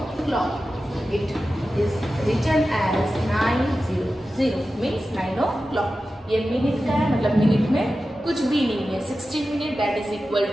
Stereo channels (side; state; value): both; normal; correlation 0.93